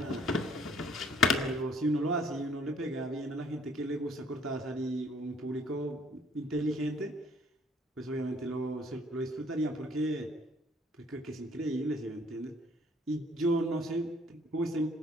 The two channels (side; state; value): both; normal; correlation 0.61